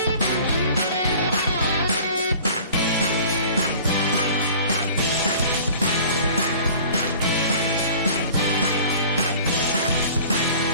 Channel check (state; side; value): inverted; both; correlation -0.45